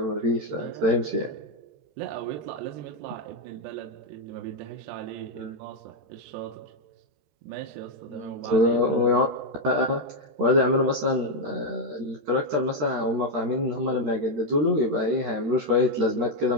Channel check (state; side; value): late; left; 14 ms